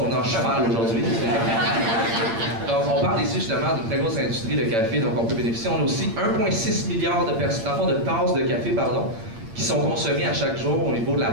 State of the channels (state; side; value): late; left; 8.9 ms